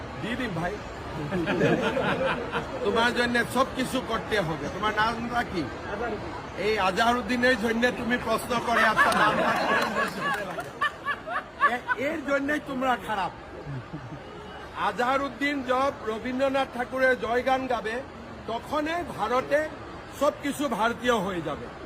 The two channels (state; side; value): identical; both; correlation 1.00